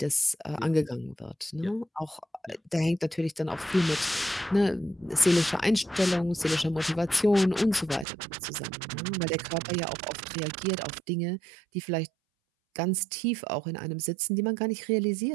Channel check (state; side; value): drops out; left; at 8.1 s